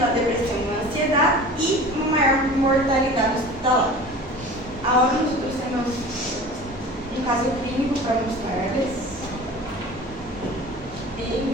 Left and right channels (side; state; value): both; normal; correlation 0.39